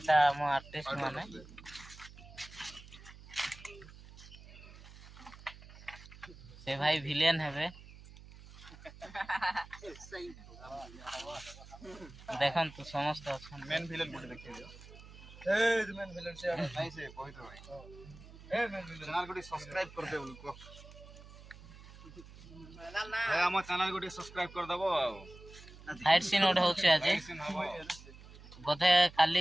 हम आर्टिस्ट माने से भाई विलेन हेबे देखम तो समस्त अच्छा मेन विलेन बोल देखियो ए मेन विलेन से नहीं से कोइ तो भाई ए मेन विलेन चैनल को सब्सक्राइब कर दे उनको भाई हम चैनल को सब्सक्राइब कर दबो फाइट सीन ओड होउची आज बोधे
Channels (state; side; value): noise; right; hum, 18 dB below the sound